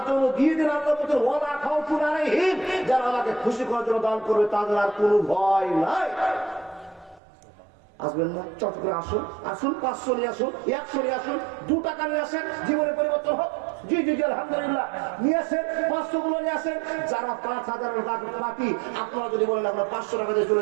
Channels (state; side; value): drops out; left; at 7.2 s